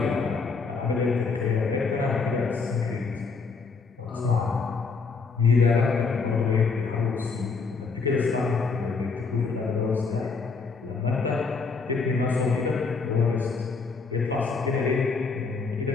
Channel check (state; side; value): quieter; right; 4.7 dB